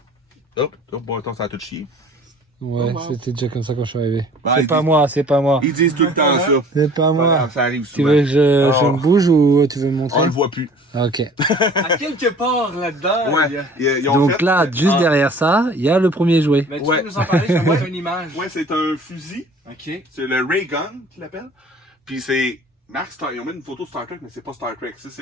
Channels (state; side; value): normal; both; correlation 0.49